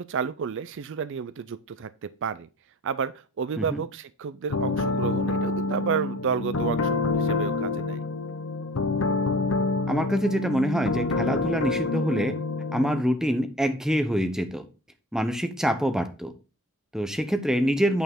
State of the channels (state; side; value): normal; both; correlation 0.45